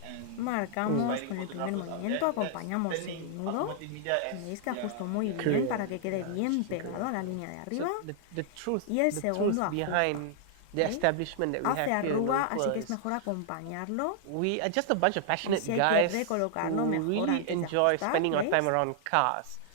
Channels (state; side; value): different; both; correlation -0.01